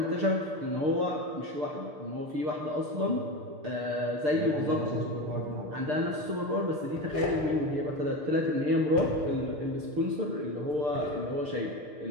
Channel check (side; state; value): left; late; 6.7 ms